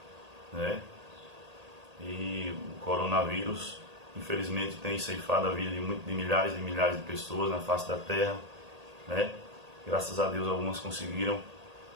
e o coronavírus, infelizmente, tem ceifado a vida de milhares e milhares de pessoas na face da terra, Graças a Deus, algumas conseguiram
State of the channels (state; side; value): late; left; 1.8 ms